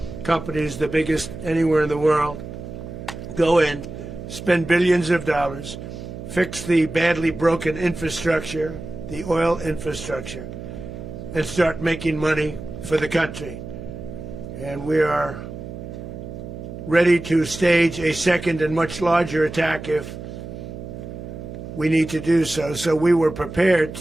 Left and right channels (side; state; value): right; noise; hum, 10 dB below the sound